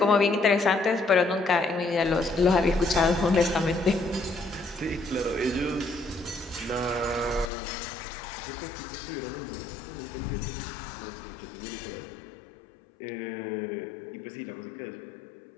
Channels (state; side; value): drops out; right; at 7.5 s